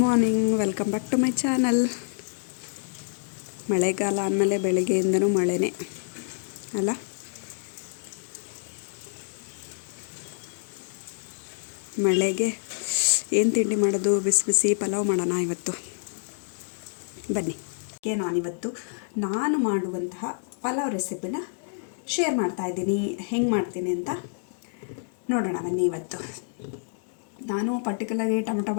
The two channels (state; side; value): silent; right; digital silence